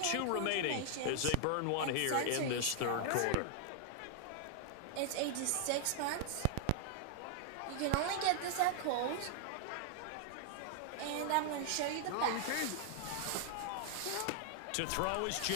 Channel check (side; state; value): both; different; correlation 0.00